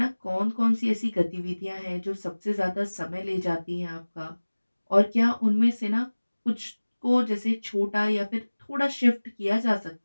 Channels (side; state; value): both; inverted; correlation -1.00